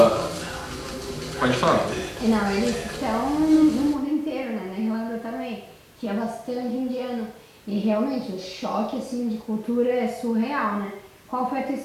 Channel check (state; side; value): identical; both; correlation 1.00